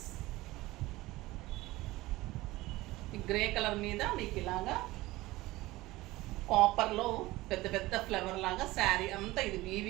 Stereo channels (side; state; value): left; quieter; 18.9 dB